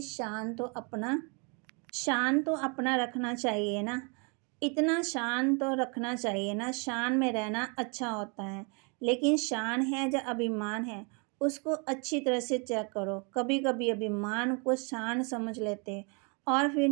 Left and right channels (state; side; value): quieter; left; 34.0 dB